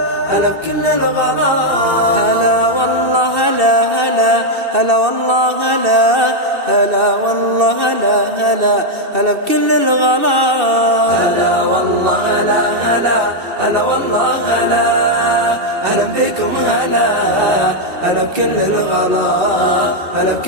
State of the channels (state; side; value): late; left; 2.7 ms